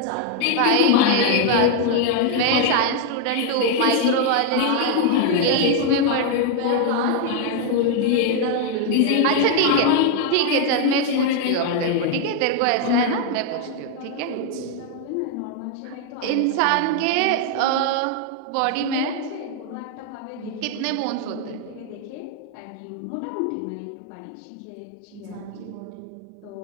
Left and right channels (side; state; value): both; different; correlation 0.00